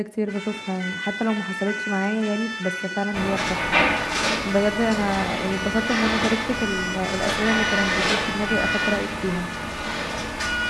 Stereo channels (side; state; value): both; identical; correlation 1.00